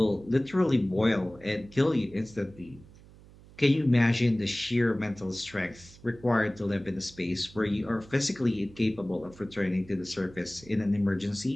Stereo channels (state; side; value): noise; right; hum, 22 dB below the sound